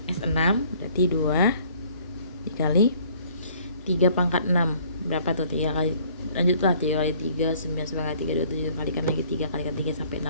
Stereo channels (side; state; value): both; inverted; correlation -0.57